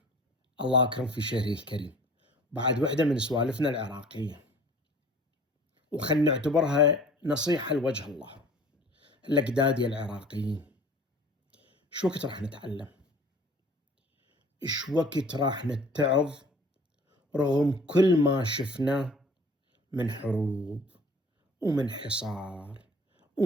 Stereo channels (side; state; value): both; normal; correlation 0.48